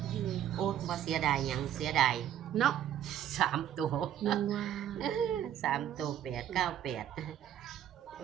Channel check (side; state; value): left; quieter; 10.7 dB